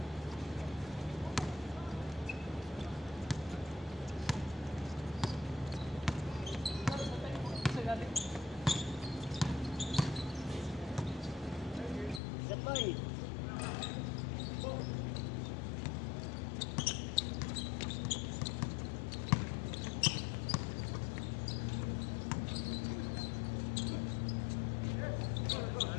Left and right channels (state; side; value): drops out; right; at 12.2 s